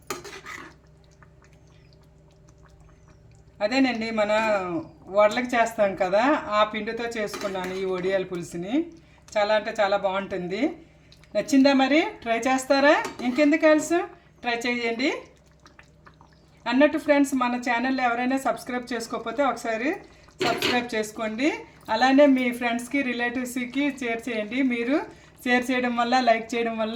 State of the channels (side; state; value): both; identical; correlation 1.00